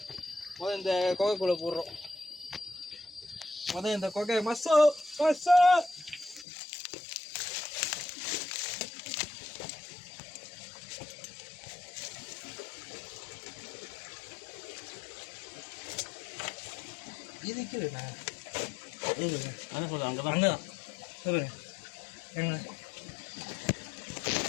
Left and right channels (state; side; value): drops out; right; at 6.5 s